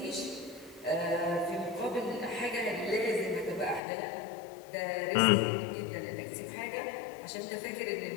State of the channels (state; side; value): drops out; right; at 3.8 s